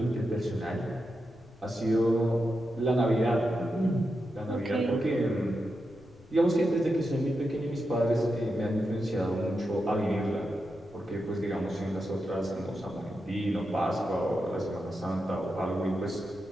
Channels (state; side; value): noise; left; rumble, 24 dB below the sound